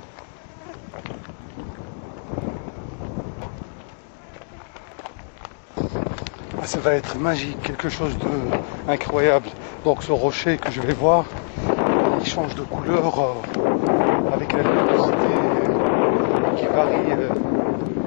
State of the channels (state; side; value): silent; right; 64 dB below the other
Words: Ça va être magique, quelque chose d'incroyable. Donc ce rocher que je vais voir, il change de couleur avec la luminosité qui